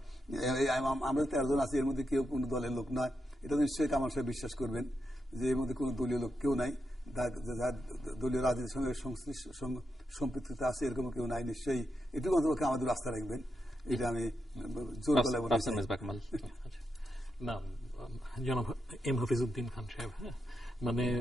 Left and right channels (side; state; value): both; normal; correlation 0.85